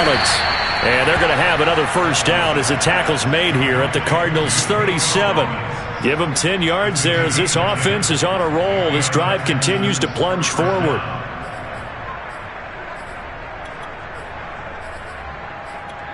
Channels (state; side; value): identical; both; correlation 1.00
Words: And they're going to have another first down as the tackle's made here at the Cardinals' 37. Give them 10 yards there as this offense is on a roll. This drive continues to plunge forward.